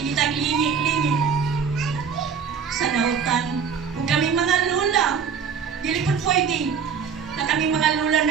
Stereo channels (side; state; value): left; quieter; 6.6 dB